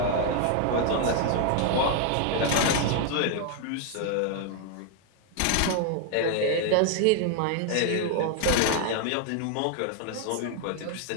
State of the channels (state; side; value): different; both; correlation 0.00